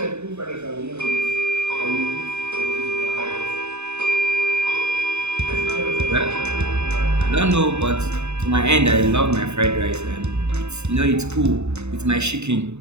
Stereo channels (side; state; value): left; late; 0.81 ms